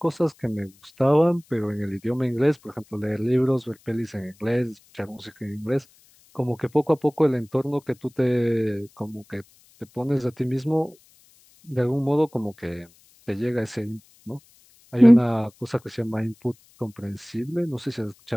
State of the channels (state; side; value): noise; left; hiss, 30 dB below the sound